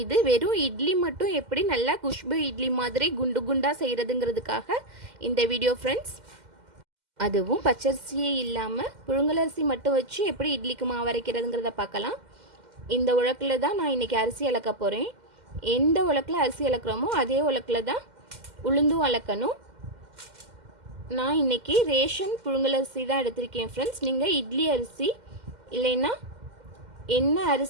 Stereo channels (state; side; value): late; left; 2.1 ms